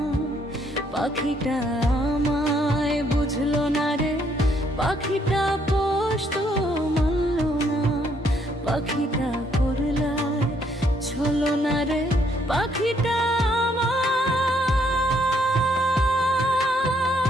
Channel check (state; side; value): normal; both; correlation 0.70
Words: পাখিটা আমায় বুঝলো না রে, পাখিটা পোষ তো মানলো না। পাখিটা করলায় ছলো না রে, পাখিটা